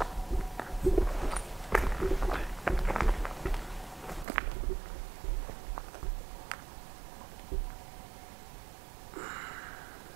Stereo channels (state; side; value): drops out; left; at 4.2 s